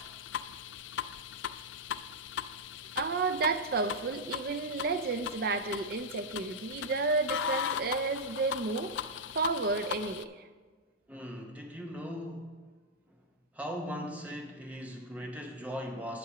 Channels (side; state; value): both; normal; correlation -0.04